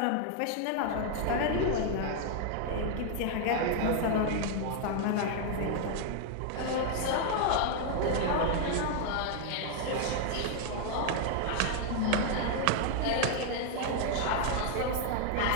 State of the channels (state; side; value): different; both; correlation 0.00